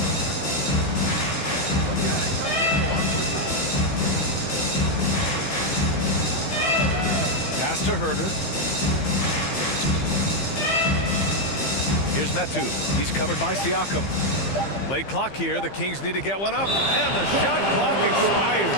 Pass to Herder. Here's Metu. He's covered by Siakam. Late clock here. The Kings need to get one up. And the shot clock expires.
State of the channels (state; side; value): late; right; 15 ms